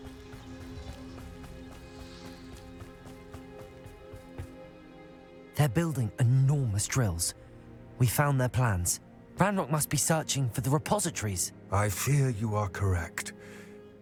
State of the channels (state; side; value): identical; both; correlation 1.00